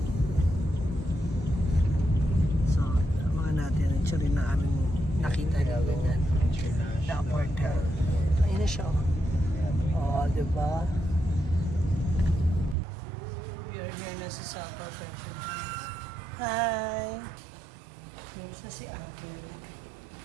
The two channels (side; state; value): left; drops out; at 12.8 s